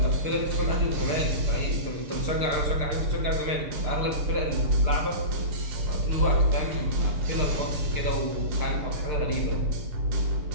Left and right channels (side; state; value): left; late; 6.6 ms